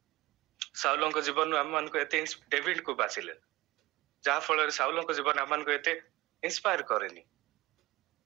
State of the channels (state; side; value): quieter; left; 19.2 dB